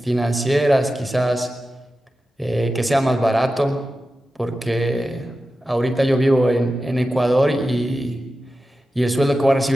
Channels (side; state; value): both; normal; correlation 0.92